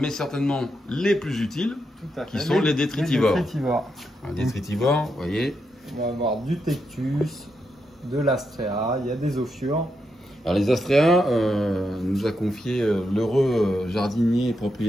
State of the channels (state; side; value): normal; both; correlation 0.83